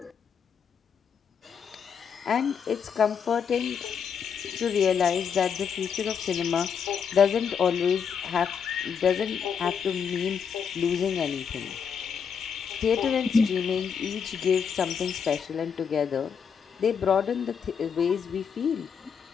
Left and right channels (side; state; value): right; quieter; 6.9 dB